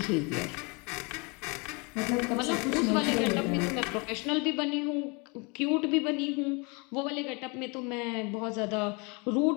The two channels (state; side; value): quieter; right; 30.5 dB